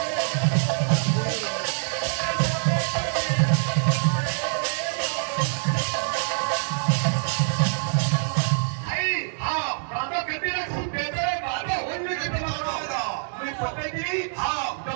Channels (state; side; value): silent; left; 62 dB below the other